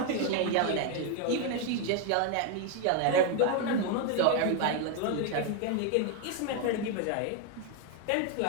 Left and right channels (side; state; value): both; different; correlation 0.01